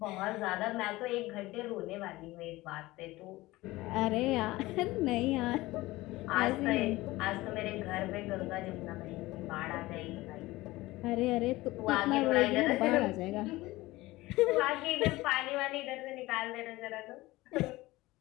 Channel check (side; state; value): right; quieter; 19.1 dB